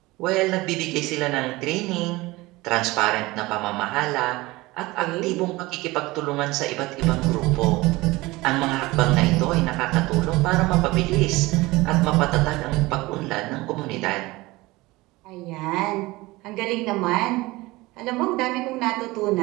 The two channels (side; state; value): left; quieter; 20.8 dB